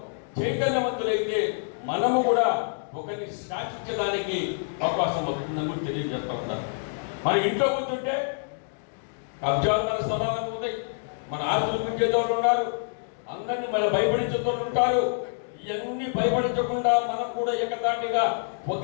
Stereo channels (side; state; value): right; silent; digital silence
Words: చైతన్యవంతులైతే మనము కూడా ఒకరిని శాసించడానికి అవకాశం వస్తుందని తెలియజేస్తా ఉన్నాను. మన ఇంట్లో కూర్చుంటే కబ్జాలు మన స్థలాలు ఉంటాయి, మన ఆస్తులు పెంచేదోళ్ళు ఉన్నారు, అందరినీ మన భయపడించేదోళ్ళు ఉంటారు. ఇవన్నీ భయపడించకుండా మనం కూడా ఏకతాటిగా